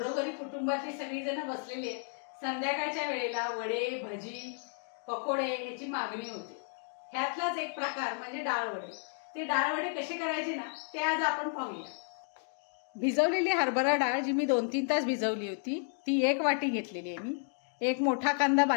कुटुंबातली सगळी जण बसलेली आहेत। संध्याकाळच्या वेळेला वडे, भजी, पकोडे ह्याची मागणी होते। ह्यातलाच एक प्रकार म्हणजे डाळ वडे। ते डाळ वडे कसे करायचे ना ते आज आपण पाहूया। भिजवलेली हरभरा डाळ जी मी 2-3 तास भिजवली होती ती 1 वाटी घेतलेली आहे मी। एक मोठा कांदा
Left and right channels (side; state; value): right; silent; 56 dB below the other